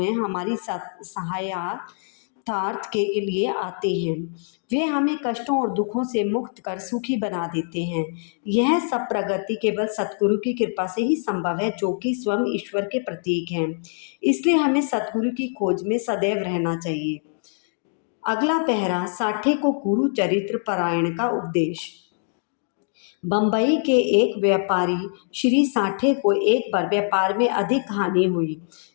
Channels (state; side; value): silent; right; digital silence